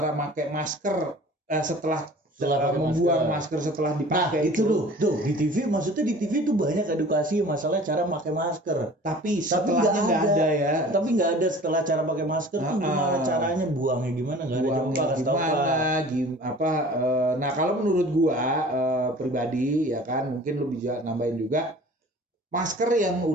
pakai masker setelah Setelah pakai membuang masker setelah Nah, dipakai itu tuh di TV, maksudnya di TV tuh banyak edukasi masalah cara pakai masker. Tapi setelahnya nggak ada ya. Tapi nggak ada setelah cara pakai masker tuh gimana caranya buangnya gimana, nggak ada. Buangnya Coba kasih tahu, Pak. nah kalau menurut gua pribadi ya kan, mungkin lu bisa nambahin juga, masker yang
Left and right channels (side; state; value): both; normal; correlation 0.45